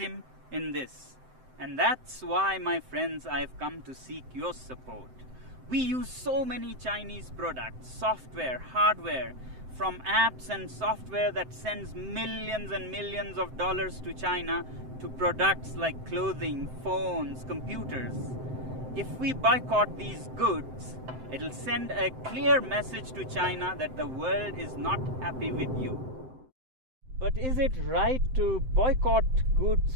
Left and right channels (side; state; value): left; late; 7.7 ms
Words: in this. And that's why, my friends, I've come to seek your support. We use so many Chinese products, software, hardware, from apps and software that sends millions and millions of dollars to China to products like clothing, phones, computers. If we boycott these goods, it'll send a clear message to China that the world is not happy with you. But is it right to boycott goods